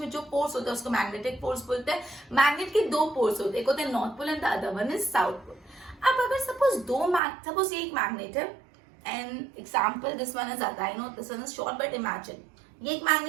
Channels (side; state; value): left; drops out; at 7.2 s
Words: जो फोर्स होता है उसको मैग्नेटिक फोर्स बोलते हैं। मैग्नेट के दो पोल्स होते हैं, एक होता है north pole and the other one is south pole. अब अगर सपोज ये एक मैग्नेट है and example this one is I know this one is short but imagine ये एक